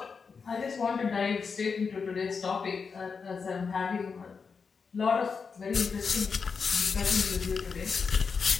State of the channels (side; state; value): right; quieter; 5.4 dB